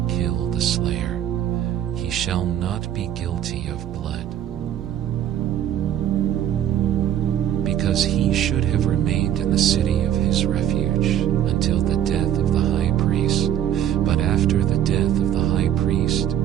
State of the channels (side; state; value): left; quieter; 10.6 dB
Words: kill the slayer, he shall not be guilty of blood, because he should have remained in the city of his refuge until the death of the high priest. But after the death of the high priest,